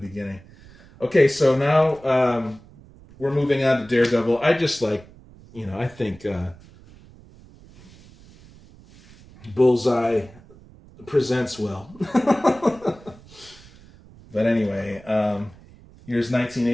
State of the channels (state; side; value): noise; right; rumble, 23 dB below the sound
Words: Okay, so now we're moving on to Daredevil. I just like, I think Bullseye presents well. But anyway, here's